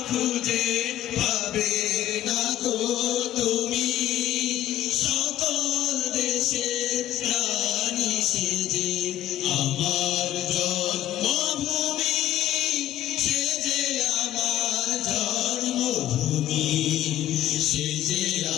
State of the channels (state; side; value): quieter; right; 13.2 dB